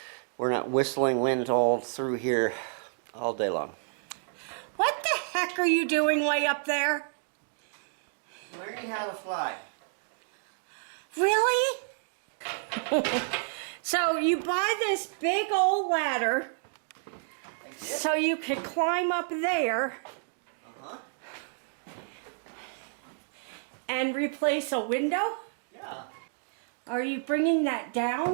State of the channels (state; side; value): silent; left; digital silence